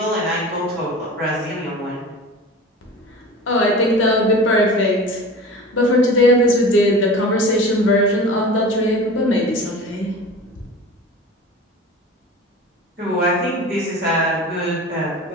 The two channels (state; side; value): normal; both; correlation 0.36